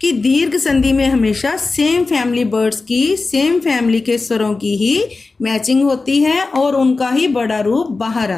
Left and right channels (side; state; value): right; quieter; 3.8 dB